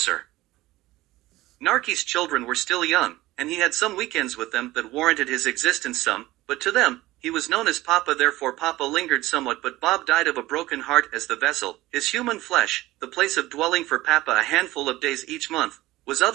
Narky's children were still young, and he had some weekends with them that warranted his existence some, but to them, he was known as Papa, therefore Papa lingered somewhat, but Bob died of a broken heart as the vessel, his human flesh, the place of dwelling for Papa a handful of days each month, was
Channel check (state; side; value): quieter; left; 17.7 dB